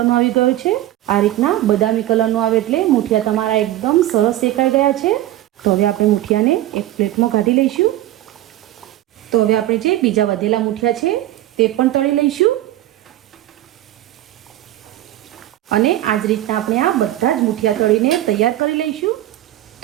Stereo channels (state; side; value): quieter; left; 14.5 dB